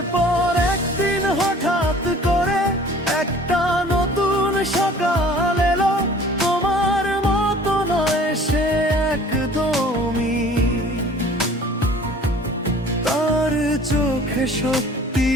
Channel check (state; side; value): normal; both; correlation 0.49